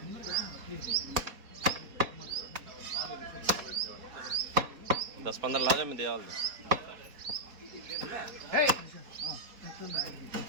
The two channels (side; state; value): left; late; 4.2 ms